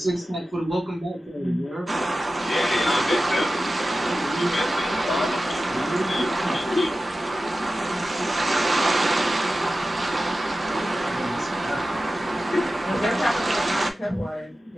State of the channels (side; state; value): both; normal; correlation 0.94